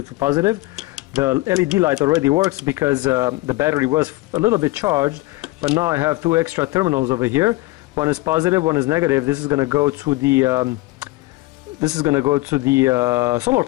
to positive. The LED light already works because the battery was a little bit charged, but now I have 2 extra terminals over here. One is positive, one is negative. This is going to go to the solar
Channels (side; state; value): right; quieter; 20.5 dB